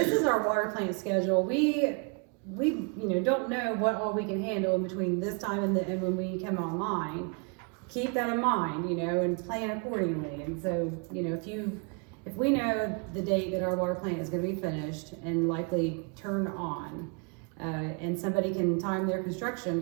is our water plant schedule, we don't know what all we can handle in between this time and when we come online. Keep that in mind, and plan accordingly, and so, if we know the date that our water plant is gonna be finished and likely turned on, and somebody can time their construction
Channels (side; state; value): left; quieter; 36.2 dB